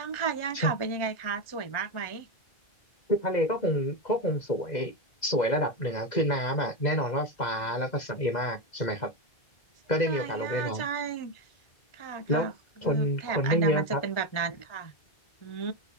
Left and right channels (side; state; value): right; late; 2.0 ms